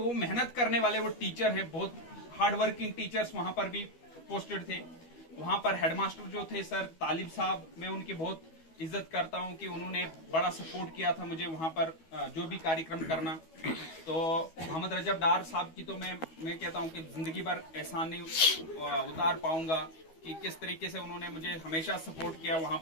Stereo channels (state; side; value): late; right; 12 ms